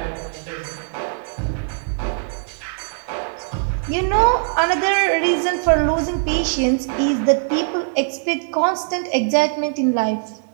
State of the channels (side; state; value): left; silent; 65 dB below the other